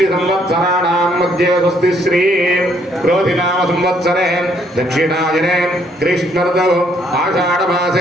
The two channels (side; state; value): both; normal; correlation 0.68